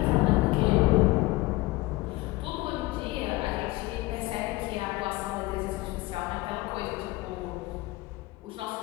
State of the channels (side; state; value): right; quieter; 20.3 dB